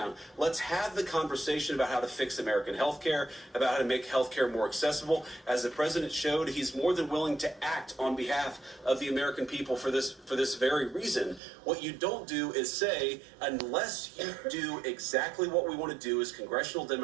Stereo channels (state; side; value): drops out; left; at 11.4 s